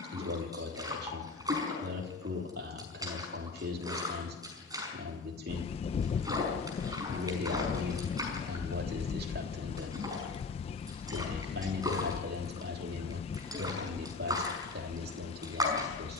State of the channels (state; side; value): quieter; right; 4.1 dB